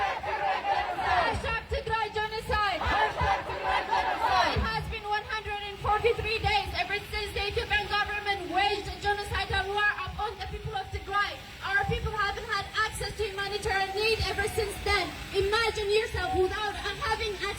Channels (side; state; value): both; identical; correlation 1.00